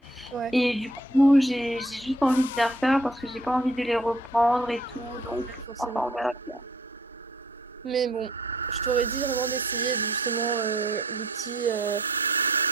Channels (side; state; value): both; normal; correlation 0.61